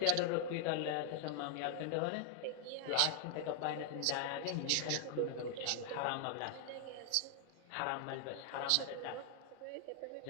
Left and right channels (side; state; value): both; different; correlation 0.00